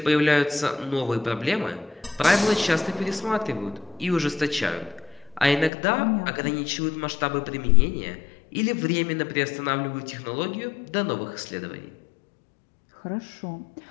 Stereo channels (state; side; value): drops out; right; at 5.7 s